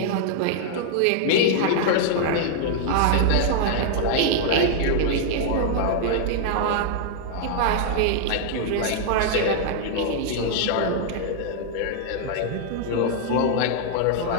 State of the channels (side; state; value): both; different; correlation -0.01